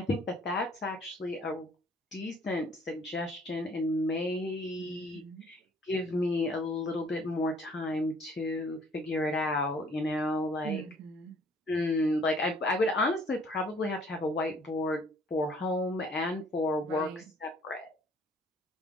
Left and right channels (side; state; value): both; normal; correlation 0.59